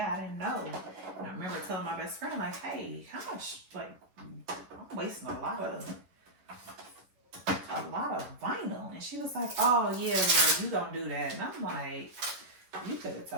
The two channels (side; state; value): left; late; 11 ms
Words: I didn't know. And I remember telling my best friend, like, hey, how much, like, I'm wasting a lot of vinyl. And she was like, oh yeah, girl, you gonna do that. And I'm like, you could have